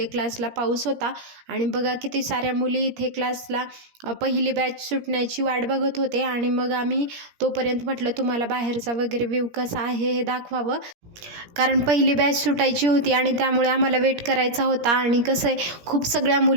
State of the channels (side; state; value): left; late; 17 ms